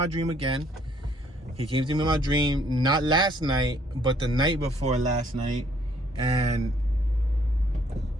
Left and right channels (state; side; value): normal; both; correlation 0.64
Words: dream again. He came to me in my dream, not last night, but the night before last night. And